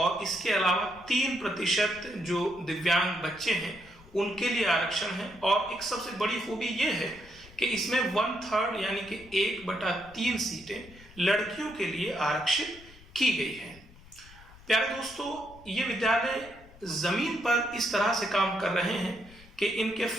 इसके अलावा 3% जो दिव्यांग बच्चे हैं उनके लिए आरक्षण है। और एक सबसे बड़ी खूबी ये है कि इसमें 1/3 यानी कि 1/3 सीटें लड़कियों के लिए आरक्षित की गई है। प्यारे दोस्तों, ये विद्यालय जमीन पर इस तरह से काम कर रहे हैं कि इनके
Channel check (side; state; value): left; noise; rumble, 22 dB below the sound